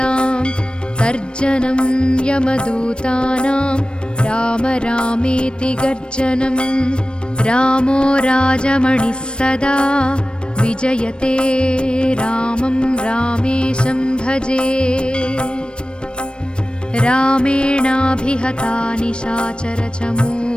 तर्जनं यमदूतानां राम रामेति गर्जनं। रामो राजमणिः सदा विजयते रामं रामेशं भजे। रामेणाभिहता निशाचरचमू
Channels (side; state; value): right; late; 0.055 ms